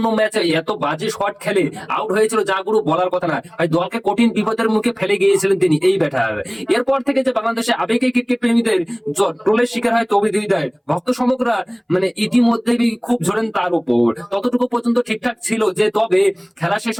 ম্যাচে এত বাজে শট খেলে আউট হয়েছিল যা গুরু বলার কথা না। ভাই দলকে কঠিন বিপদের মুখে ফেলে গিয়েছিলেন তিনি এই ব্যাটার। এরপর থেকে যে বাংলাদেশে আবেগে ক্রিকেট প্রেমীদের ট্রোলের শিকার হয় তৌহিদ হৃদয়, ভক্ত সমগ্রা মানে ইতিমধ্যেই খুব ঝরেন তার উপর। ততটুকু পর্যন্ত ঠিকঠাক ছিল যে, তবে খেলা শেষ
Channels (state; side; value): identical; both; correlation 1.00